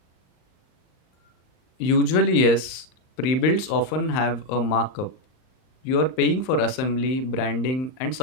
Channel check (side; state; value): right; late; 39 ms